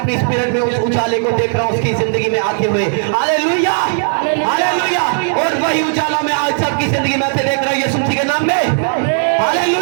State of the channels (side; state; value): left; silent; digital silence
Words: स्पिरिट में उस उजाले को देख रहा हूं उसकी जिंदगी में आते हुए। Hallelujah, hallelujah. और वही उजाला मैं आज सबकी जिंदगी में आते देख रहा हूं यीशु मसीह के नाम में।